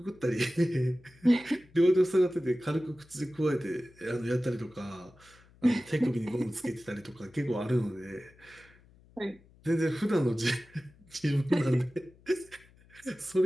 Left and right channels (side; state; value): left; noise; hum, 27 dB below the sound